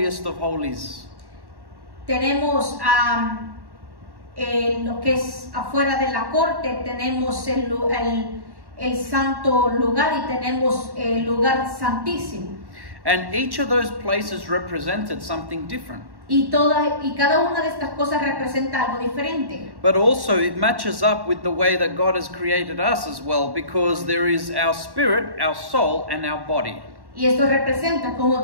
of holies. tenemos lo que es afuera de la corte, tenemos el santo lugar y tenemos el lugar santísimo. And each of those places represented something different. Y cada una de estas cosas representa algo diferente. But also it matches up with the way that God has created us as well, because there is our spirit, our soul, and our body. Y esto representa, como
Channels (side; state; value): left; late; 1.1 ms